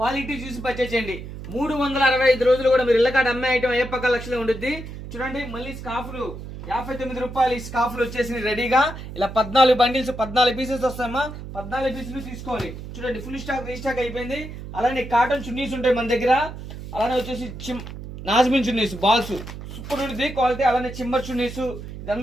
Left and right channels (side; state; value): right; noise; hum, 11 dB below the sound